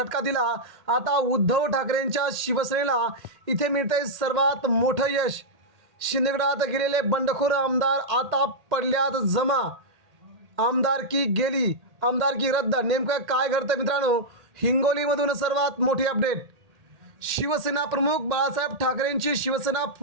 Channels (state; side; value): late; left; 1.8 ms